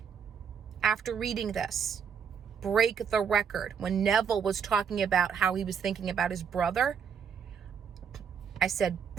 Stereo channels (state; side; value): quieter; left; 7.1 dB